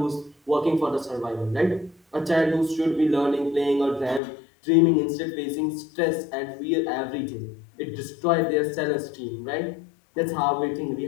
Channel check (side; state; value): right; drops out; at 4.2 s